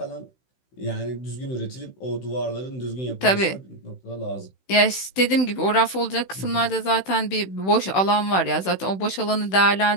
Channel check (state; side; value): late; right; 16 ms